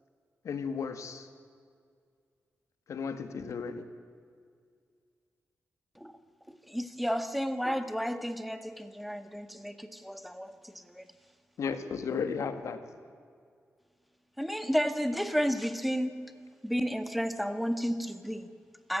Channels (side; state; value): both; normal; correlation 0.93